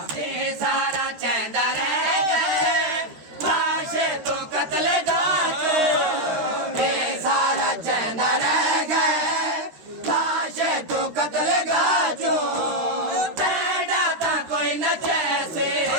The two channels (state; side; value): late; left; 13 ms